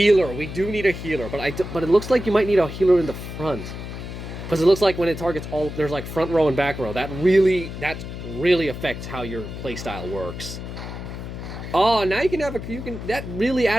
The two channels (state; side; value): noise; left; hum, 9 dB below the sound